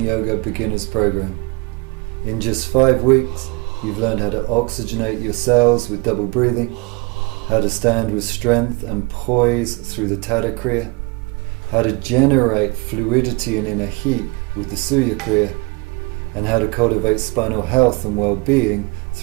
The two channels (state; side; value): quieter; left; 27.4 dB